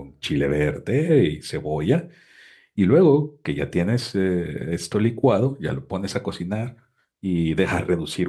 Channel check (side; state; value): both; identical; correlation 1.00